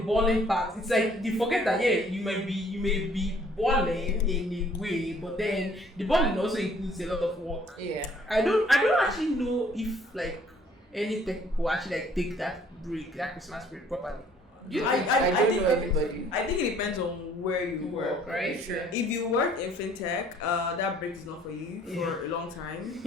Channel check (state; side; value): normal; both; correlation 0.59